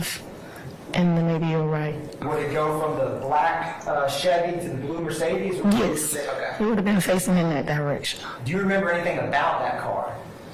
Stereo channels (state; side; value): identical; both; correlation 1.00